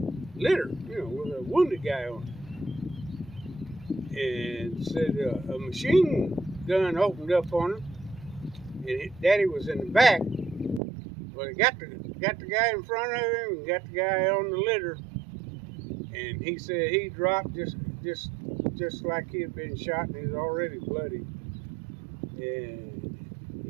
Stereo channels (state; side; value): drops out; left; at 10.8 s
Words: litter, with a wounded guy on it, and said a machine gun opened up on him, and Daddy was in the back. Well, he got the guy in front of him and got the guy on the litter, and he said he dropped just just like he had been shot, and he was already bloody. And